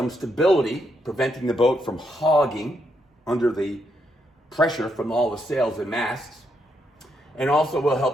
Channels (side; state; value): both; normal; correlation 0.78